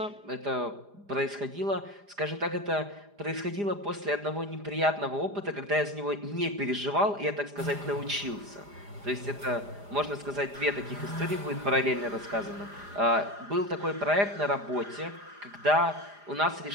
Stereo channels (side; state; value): left; late; 4.9 ms